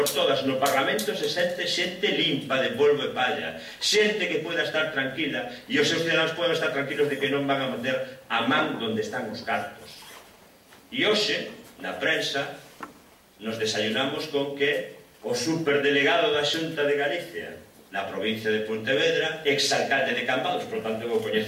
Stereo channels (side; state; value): both; identical; correlation 1.00